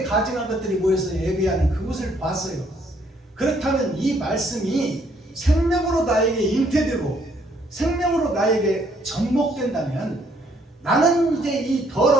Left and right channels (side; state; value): both; normal; correlation 0.67